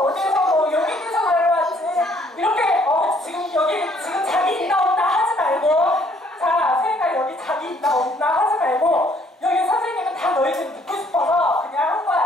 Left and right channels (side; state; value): both; normal; correlation 0.63